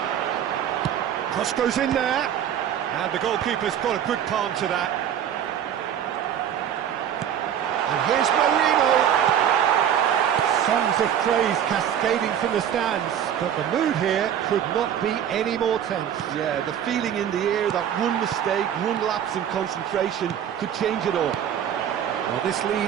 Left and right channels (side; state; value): left; quieter; 9.5 dB